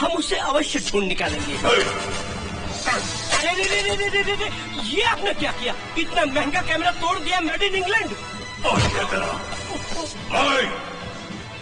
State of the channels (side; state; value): both; identical; correlation 1.00